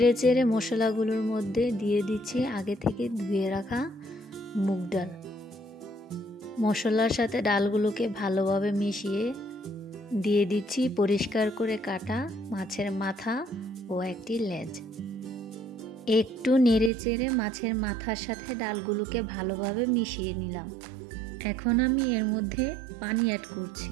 চেড়ে মশলাগুলোর মধ্যে দিয়ে দিচ্ছি আগে থেকে ধুয়ে রাখা মুগ ডাল। মশলার সাথে ডালগুলোকে ভালোভাবে মিশিয়ে দিয়ে দিচ্ছি পরিষ্কার করে কাটা মাছের মাথা ও একটি লেজ। একটু নেড়ে চেড়ে মাছের মাথার সাথে ডালগুলোকে ভালোভাবে মিশিয়ে নিলাম। এখন আমি এর মধ্যে পানি অ্যাড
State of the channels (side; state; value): left; drops out; at 16.9 s